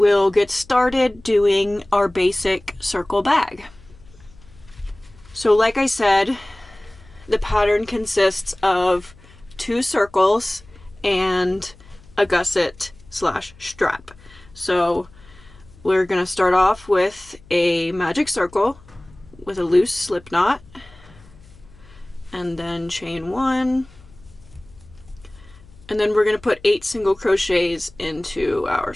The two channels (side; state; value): left; noise; hum, 24 dB below the sound